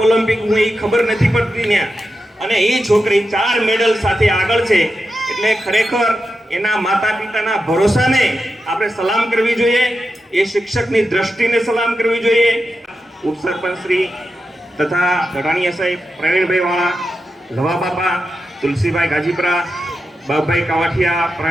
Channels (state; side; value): normal; both; correlation 0.89